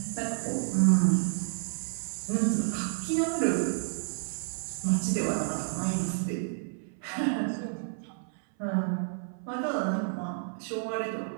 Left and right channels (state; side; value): silent; left; 58 dB below the other